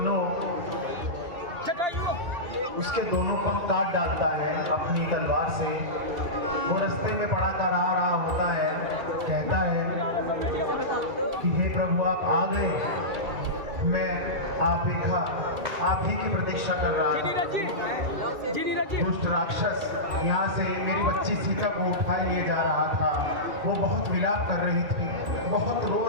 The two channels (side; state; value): left; late; 2.3 ms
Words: उसके दोनों पंख काट डालता है अपनी तलवार से। वो रास्ते में पड़ा कर आ रहा होता है, कहता है कि हे प्रभु आप आ गए, मैं आप ही की प्रतीक्षा कर रहा था। दुष्ट राक्षस यहाँ से मेरी बच्ची सीता को उठा लिए जा रहा था। वो बहुत विलाप कर रही थी, बहुत रो